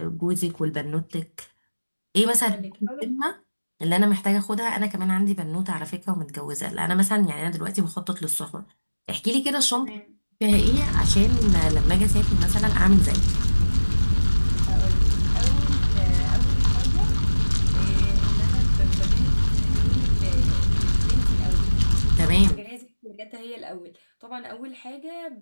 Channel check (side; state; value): both; inverted; correlation -1.00